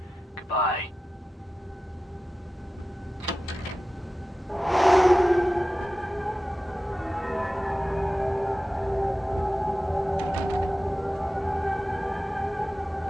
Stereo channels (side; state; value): both; normal; correlation 0.94